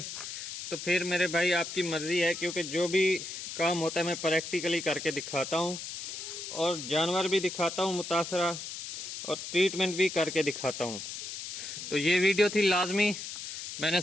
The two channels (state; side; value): noise; left; hiss, 8 dB below the sound